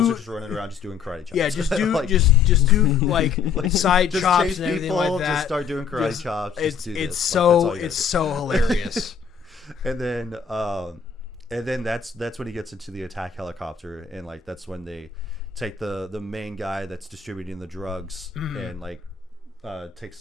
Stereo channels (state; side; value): quieter; right; 6.7 dB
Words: are just running around just doing karate chops. Yeah, just do like, just do like side just chops chase and everything people, like that. Just start doing karate chops. It's so hilarious. And then that's when he gets into the attack helicopter, and like that's when they take the main guy that's distributing the drugs, and like